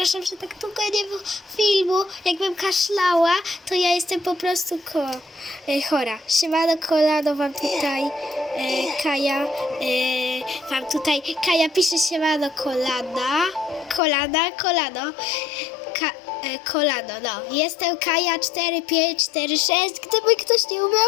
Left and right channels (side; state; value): right; drops out; at 14.0 s